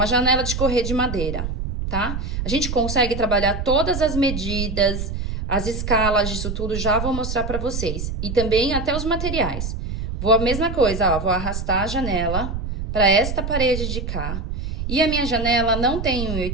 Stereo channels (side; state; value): right; noise; rumble, 4 dB below the sound